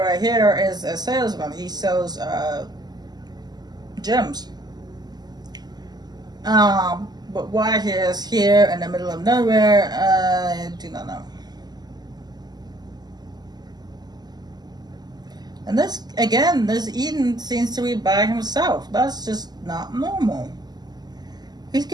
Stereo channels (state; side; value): late; left; 0.20 ms